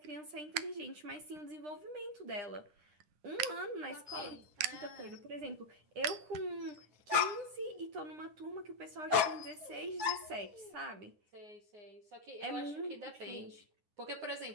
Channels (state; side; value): late; left; 9.4 ms